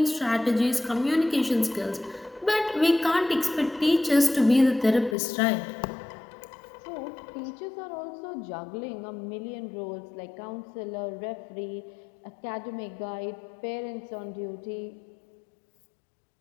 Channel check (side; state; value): right; drops out; at 5.2 s